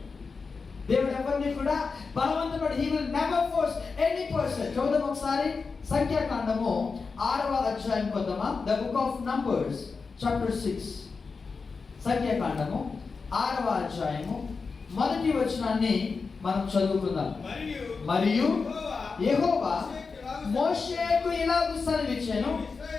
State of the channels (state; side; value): quieter; right; 4.7 dB